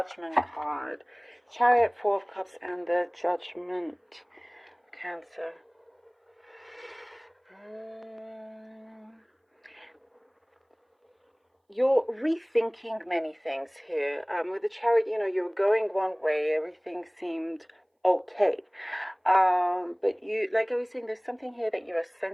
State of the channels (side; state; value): both; identical; correlation 1.00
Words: card. Chariot, Four of Cups, and the Judgment. Cancer. You're rethinking many things here. With the Chariot, you're going one way, everything seemed okay. But you, like I was saying, there's something here that you're